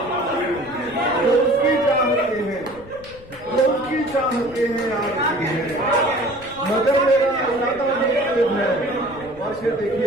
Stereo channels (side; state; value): left; noise; rumble, 21 dB below the sound